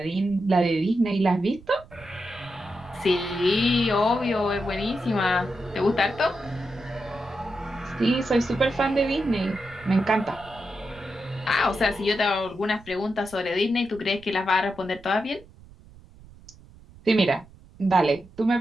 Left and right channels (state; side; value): noise; right; rumble, 22 dB below the sound